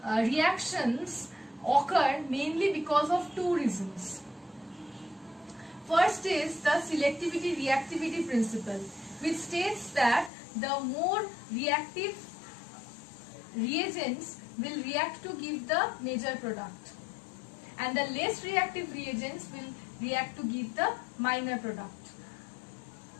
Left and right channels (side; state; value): right; drops out; at 10.3 s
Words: reactions occur mainly because of 2 reasons. First is the selectivity-reactivity principle, which states that the more reactive reagents will react to give the major product and the less reactive reagents will react to give the minor product.